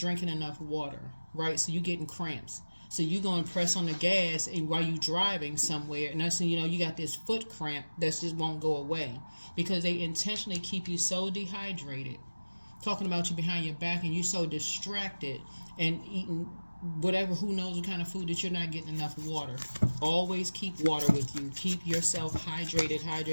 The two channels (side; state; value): both; inverted; correlation -1.00